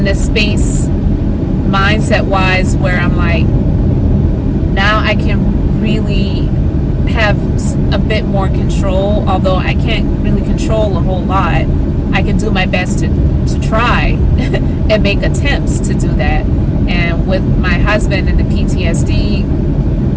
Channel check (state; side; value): identical; both; correlation 1.00